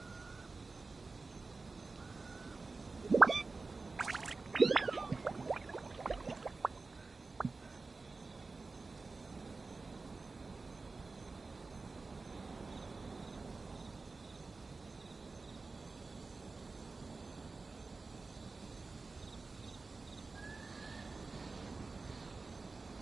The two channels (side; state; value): left; quieter; 3.9 dB